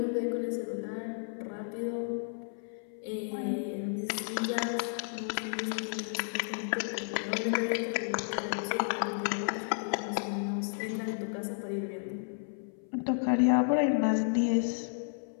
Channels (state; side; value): silent; right; 56 dB below the other